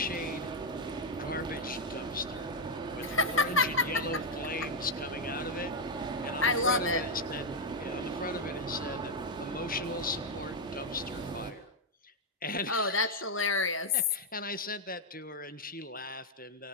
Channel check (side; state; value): both; normal; correlation 0.01